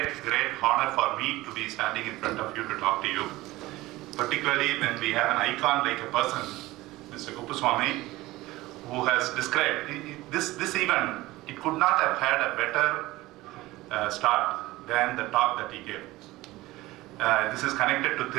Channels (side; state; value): left; quieter; 18.6 dB